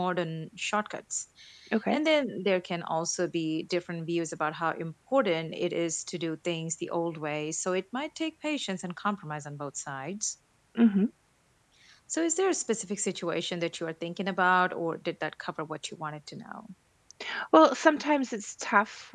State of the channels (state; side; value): identical; both; correlation 1.00